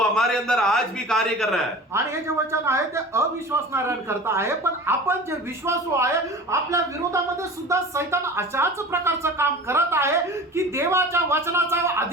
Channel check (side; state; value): both; normal; correlation 0.37